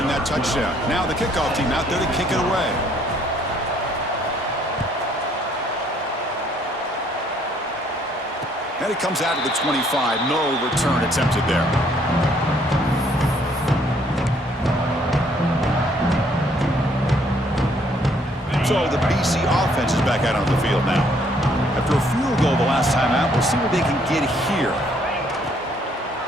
that touchdown. Now the kickoff team out there to kick it away. And it comes out to the 25. No return attempted there. So the BC offense is back out on the field now. After a field goal the last time out, we'll see what they can get here.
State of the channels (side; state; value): both; normal; correlation 0.65